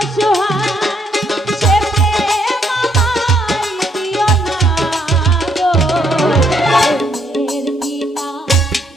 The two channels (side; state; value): both; normal; correlation 0.72